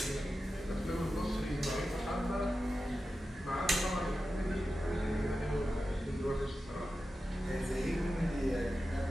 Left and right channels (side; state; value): both; normal; correlation 0.92